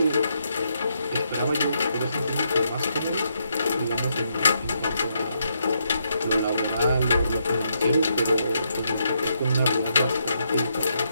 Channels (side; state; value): both; inverted; correlation -0.78